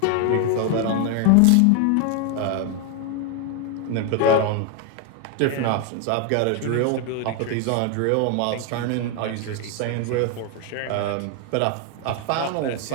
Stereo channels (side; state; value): both; different; correlation 0.01